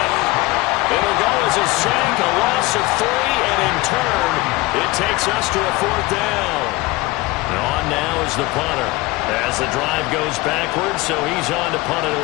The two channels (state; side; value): quieter; right; 21.2 dB